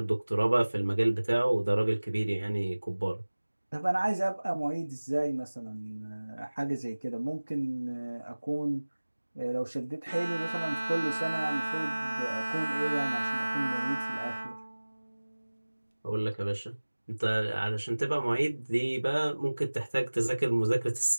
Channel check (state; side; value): inverted; both; correlation -1.00